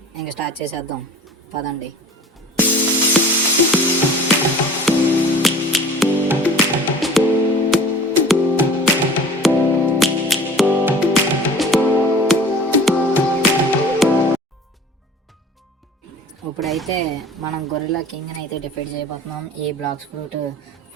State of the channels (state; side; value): normal; both; correlation 0.43